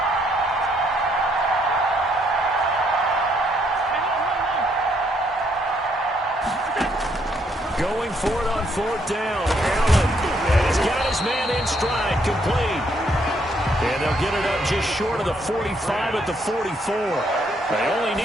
Going for it on 4th down. Allen. And he's got his man in stride, complete. And they'll get it up just short of the 45 at the 44. They only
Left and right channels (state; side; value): normal; both; correlation 0.71